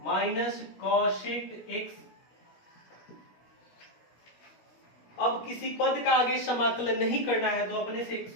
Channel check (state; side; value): late; right; 17 ms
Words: cosec x। अब किसी पद का आगे समाकलन नहीं करना है तो अपने से एक